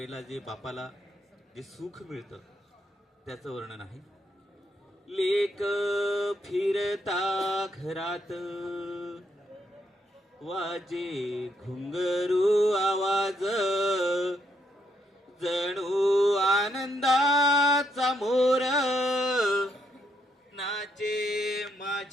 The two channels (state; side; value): normal; both; correlation 0.75